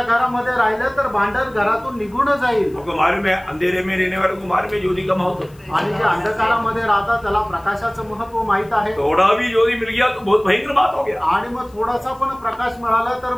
घरामध्ये राहिलं तर भांडण घरातून निघून जाईल। आपको मालूम है अंधेरे में रहने वालों को मालूम है ज्योति का महत्व, आणि जे अंधकारामध्ये राहतात त्याला प्रकाशाचं महत्व माहित आहे। थोड़ा भी ज्योति मिल गया तो बहुत भयंकर बात हो गया, आणि मग थोडासा पण प्रकाश मिळाला तर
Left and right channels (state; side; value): noise; left; hiss, 30 dB below the sound